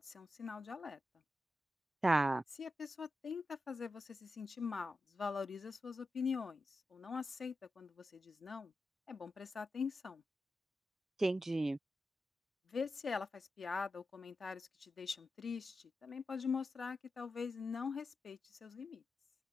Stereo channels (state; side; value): normal; both; correlation 0.91